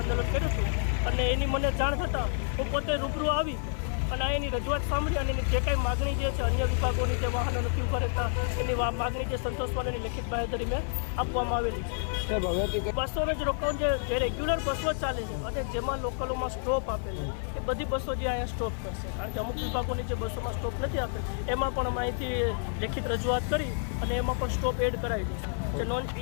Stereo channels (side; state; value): right; silent; 57 dB below the other